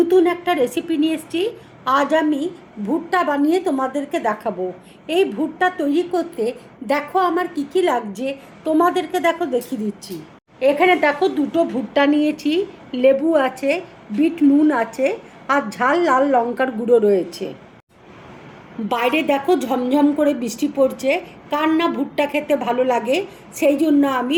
একটা রেসিপি নিয়ে এসেছি। আজ আমি ভুট্টা বানিয়ে তোমাদেরকে দেখাবো। এই ভুট্টা তৈরি করতে দেখো আমার কী কী লাগছে, তোমাদেরকে দেখো দেখিয়ে দিচ্ছি। এখানে দেখো দুটো ভুট্টা নিয়েছি, লেবু আছে, বিট নুন আছে, আর ঝাল লাল লঙ্কার গুঁড়ো রয়েছে। বাইরে দেখো ঝমঝম করে বৃষ্টি পড়ছে, কার না ভুট্টা খেতে ভালো লাগে, সেই জন্য আমি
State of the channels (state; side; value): identical; both; correlation 1.00